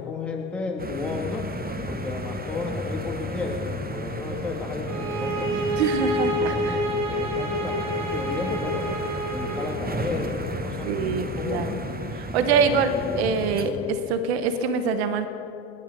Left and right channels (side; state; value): both; normal; correlation 0.29